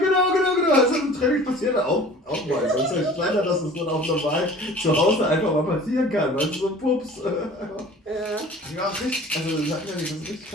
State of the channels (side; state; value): both; normal; correlation 0.45